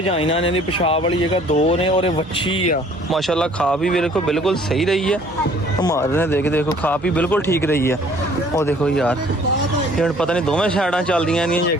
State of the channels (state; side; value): normal; both; correlation 0.56